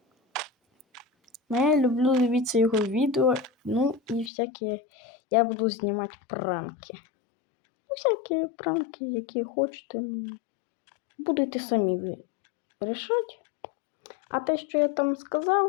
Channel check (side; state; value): right; drops out; at 4.3 s